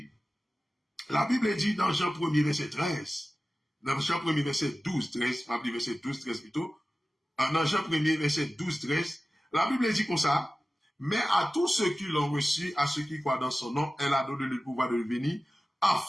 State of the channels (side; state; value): both; normal; correlation 0.96